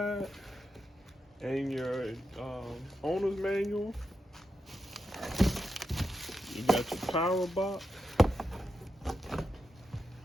and your owner's manual. You got your power box.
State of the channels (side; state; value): both; normal; correlation 0.87